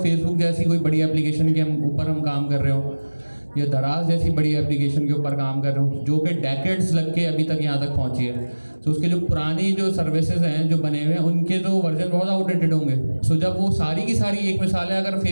जैसी कोई बड़ी एप्लीकेशन के ऊपर हम काम कर रहे हो, या दराज जैसी बड़ी एप्लीकेशन के ऊपर काम कर रहे हो जो कि डेकेड्स लग के अभी तक यहाँ तक पहुँची है। तो उसके जो पुरानी जो सर्विसेज हैं जो बने हुए हैं उनके तो वर्जन बहुत आउटडेटेड होंगे। सो जब वो सारी की सारी, एक मिसाल है अगर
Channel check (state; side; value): inverted; both; correlation -1.00